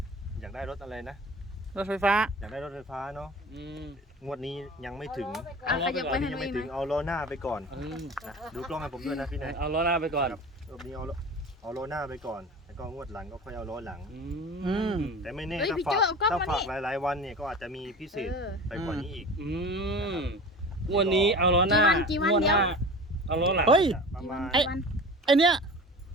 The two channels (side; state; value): both; normal; correlation 0.36